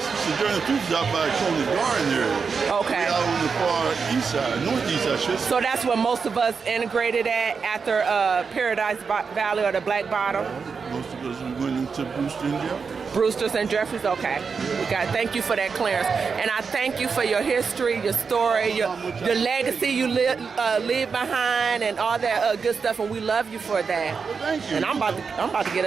Sojourner Truth is out by Coleman Garden area. Okay. Way out on the far east side, northeast, I should say. So that's where most of us integrated at after Paradise Valley or the Black Bottom? Most of us went into Brewster and Jeffrey. Brewster's and Jeffries, okay. Thank you for that clearance. And I thank you for your history, your story, your legacy you leave behind and all that good stuff, and we love you for that. Well, thank you. And I'm about to get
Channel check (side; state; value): left; quieter; 5.5 dB